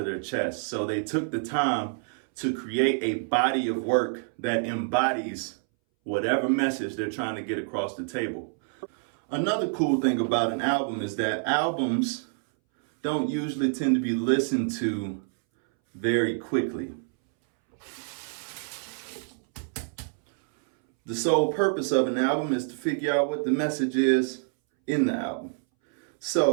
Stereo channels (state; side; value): silent; left; 60 dB below the other